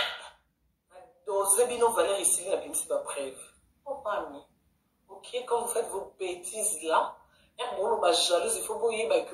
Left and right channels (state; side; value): identical; both; correlation 1.00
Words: dosé bien nos valeurs ici, la bien, c'est pas preuve. Oh, pas mis. Ok, quand vous faites vos bêtises là, jalouse, il faut que vous ayez que